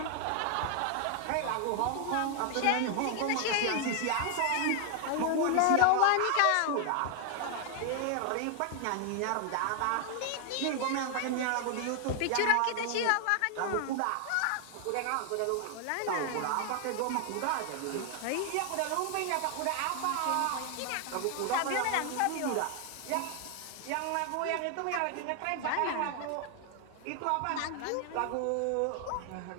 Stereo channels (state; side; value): different; both; correlation 0.00